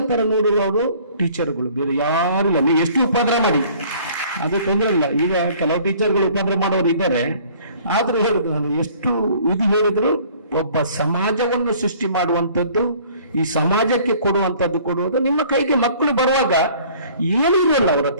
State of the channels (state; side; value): inverted; both; correlation -0.54